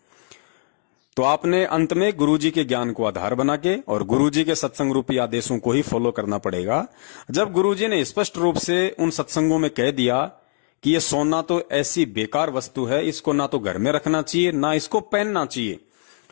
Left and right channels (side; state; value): right; silent; 64 dB below the other